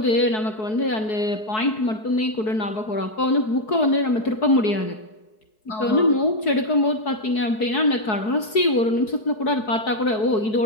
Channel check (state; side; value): late; right; 4.7 ms